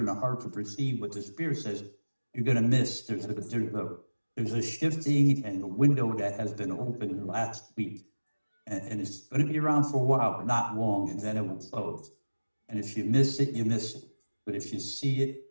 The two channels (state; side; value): inverted; both; correlation -1.00